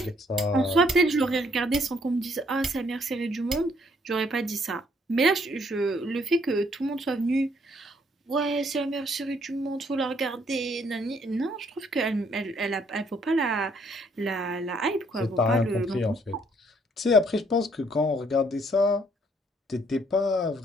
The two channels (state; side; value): normal; both; correlation 0.67